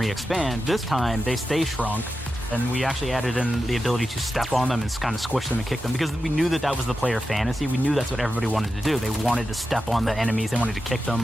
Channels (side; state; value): both; normal; correlation 0.90